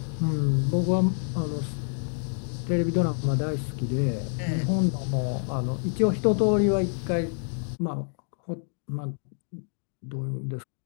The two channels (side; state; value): right; silent; digital silence